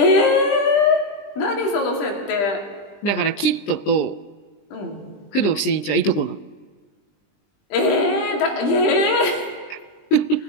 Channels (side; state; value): right; late; 20 ms